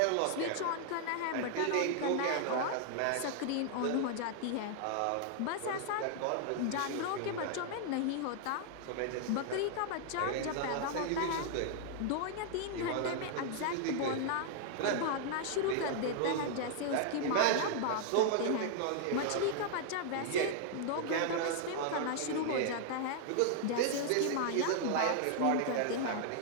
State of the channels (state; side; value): different; both; correlation 0.00